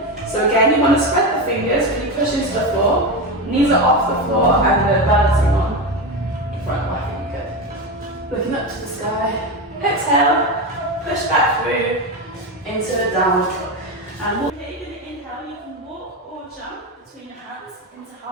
So again, you want to spread the fingers, really push into the floor, knees are off the floor, and we're balancing on the front leg. Good. Looking up to the sky. Exhale, push back through into the downward dog. And you're going to inhale, you can walk or jump between your hands into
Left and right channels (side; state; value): both; normal; correlation 0.16